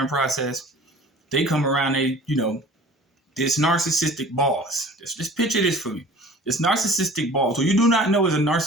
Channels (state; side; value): normal; both; correlation 0.46